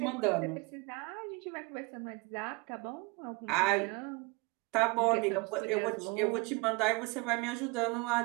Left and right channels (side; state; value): left; quieter; 27.2 dB